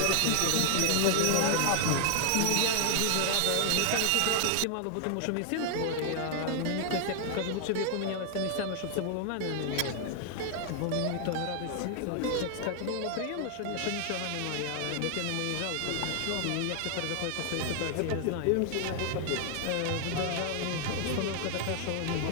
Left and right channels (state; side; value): different; both; correlation 0.00